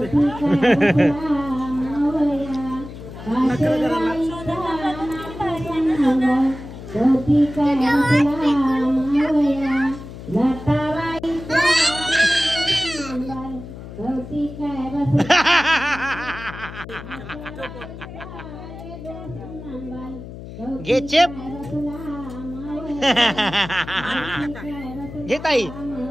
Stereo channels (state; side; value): noise; left; hum, 13 dB below the sound